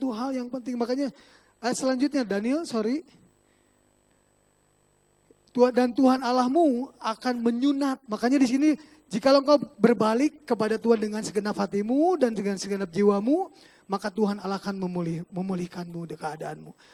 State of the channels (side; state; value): both; identical; correlation 1.00